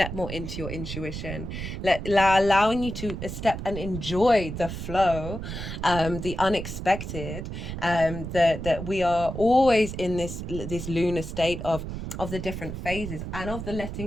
more into your intuition, allowing you to step and enjoy the flow, the unexpected, that we are always in this lunar state of the different phases and of the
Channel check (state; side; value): noise; right; rumble, 7 dB below the sound